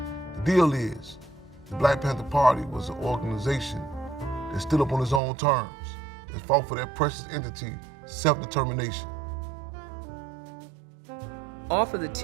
The deal is, the Black Panther Party was an organization that stood up on its own terms, that fought for that precious entity, self-determination. Off of the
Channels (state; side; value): drops out; left; at 5.2 s